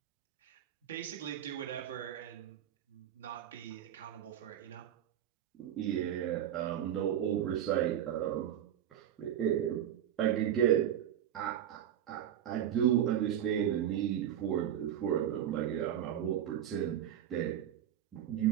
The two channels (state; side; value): quieter; left; 10.6 dB